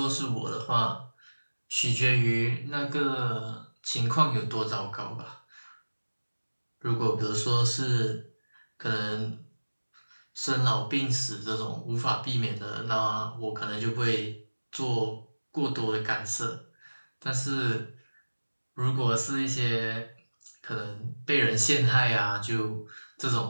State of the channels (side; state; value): both; inverted; correlation -1.00